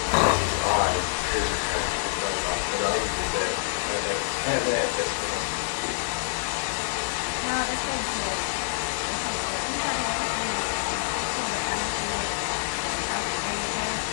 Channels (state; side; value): silent; right; 55 dB below the other